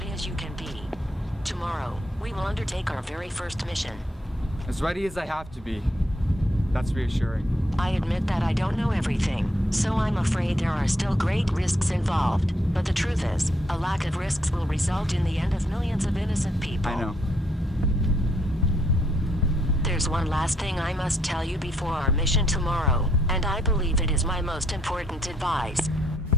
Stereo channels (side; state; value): both; normal; correlation 0.73